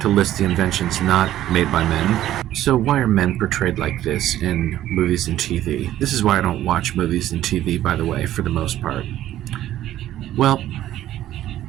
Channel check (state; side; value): quieter; left; 13.1 dB